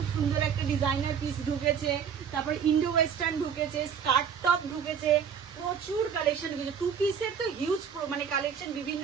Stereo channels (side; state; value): left; quieter; 7.3 dB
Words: সুন্দর একটা ডিজাইনার পিস ঢুকেছে, তারপরে ইন্ডো ওয়েস্টার্ন ঢুকেছে, স্কার্ট টপ ঢুকেছে, প্রচুর কালেকশন ঢুকেছে। টু পিসের তো হিউজ মানে কালেকশন,